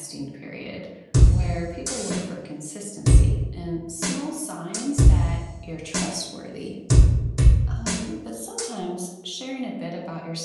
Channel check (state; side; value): identical; both; correlation 1.00